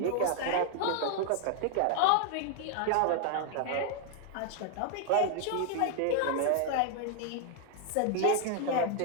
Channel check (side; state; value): both; different; correlation 0.00